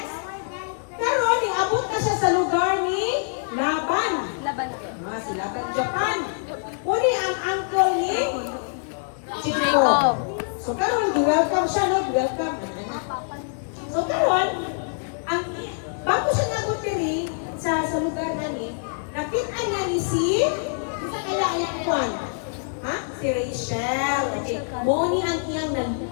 Karon, niabot na siya sa lugar ni Laban. Si Laban Japan. Uni ang uncle ni Jacob. So karon, welcome siya, no? Welcome. So karon, bago siya nabot diri sa lugar nani, nakita niya ni sa kalayan kwan. Ha? Si Rachel. Okay. Moni ang iyang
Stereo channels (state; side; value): silent; right; 62 dB below the other